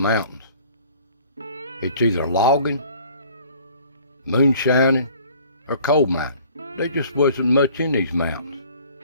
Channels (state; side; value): inverted; both; correlation -0.53